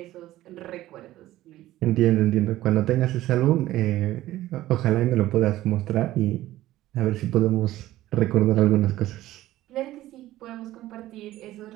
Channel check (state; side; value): quieter; left; 15.2 dB